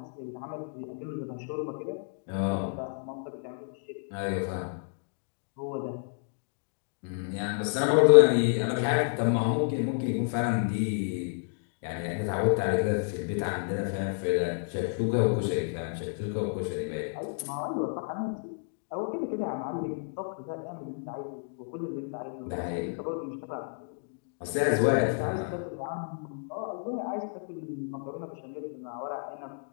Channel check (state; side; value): silent; right; digital silence